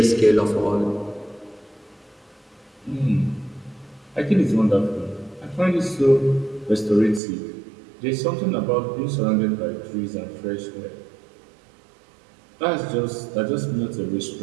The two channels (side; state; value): left; drops out; at 7.2 s